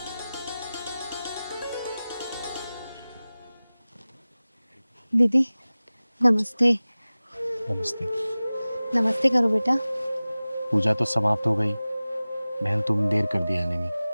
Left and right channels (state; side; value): inverted; both; correlation -0.98